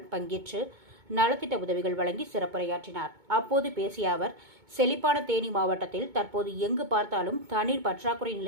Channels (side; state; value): left; late; 2.2 ms